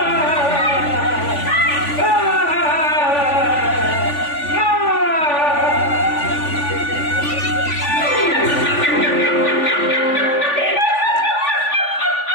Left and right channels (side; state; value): right; late; 3.5 ms